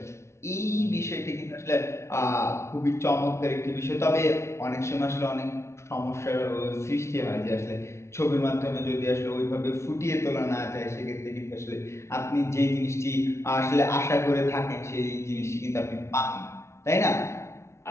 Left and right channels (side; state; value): right; late; 0.13 ms